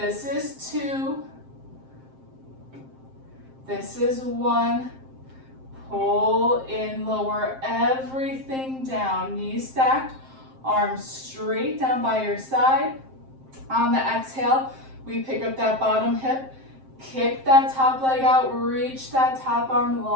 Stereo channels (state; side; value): late; left; 7.6 ms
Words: is 2. This is 1. Pull in, lower everything down. Knees stacked, arms straight down by your side. On the exhale, we pick up that bottom hip, kick that top leg out, reach that top arm